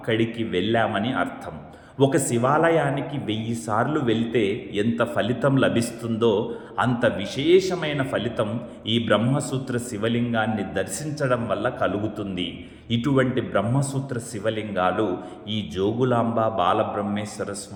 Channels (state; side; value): identical; both; correlation 1.00